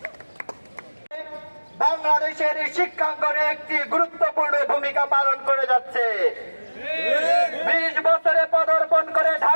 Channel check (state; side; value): inverted; both; correlation -1.00